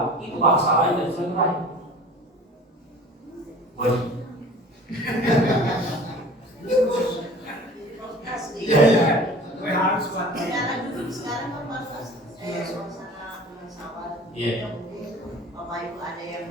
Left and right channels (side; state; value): both; normal; correlation 0.43